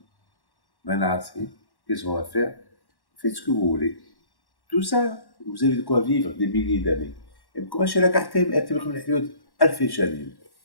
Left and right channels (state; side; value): late; right; 1.1 ms